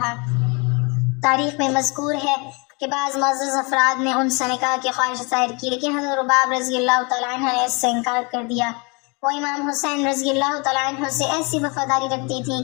تاریخ میں مذکور ہے کہ بعض معزز افراد نے ان سے نکاح کی خواہش ظاہر کی، لیکن حضرت رباب رضی اللہ تعالیٰ عنہ نے اس سے انکار کر دیا۔ وہ امام حسین رضی اللہ تعالیٰ عنہ سے ایسی وفاداری رکھتی تھیں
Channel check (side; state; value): right; quieter; 30.4 dB